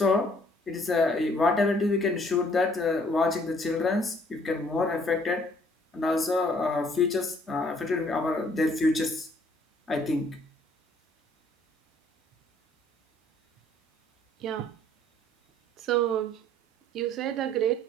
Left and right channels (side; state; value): both; normal; correlation 0.61